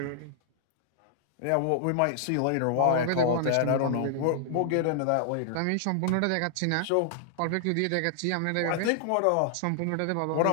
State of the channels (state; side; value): different; both; correlation -0.01